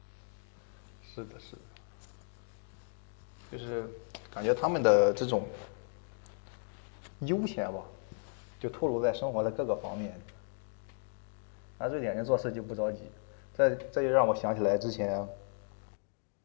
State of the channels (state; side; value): silent; right; 54 dB below the other